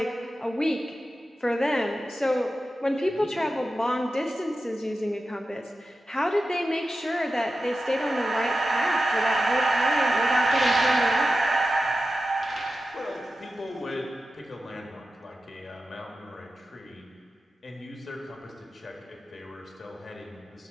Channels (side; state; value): both; normal; correlation 0.92